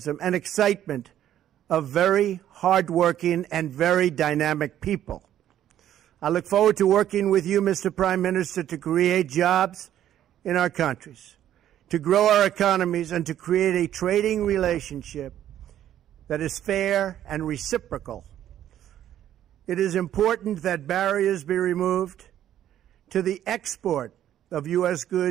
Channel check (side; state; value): left; quieter; 11.4 dB